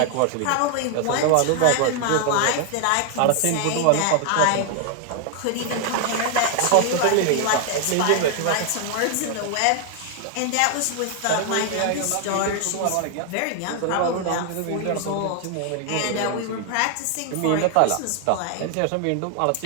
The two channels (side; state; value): both; different; correlation 0.00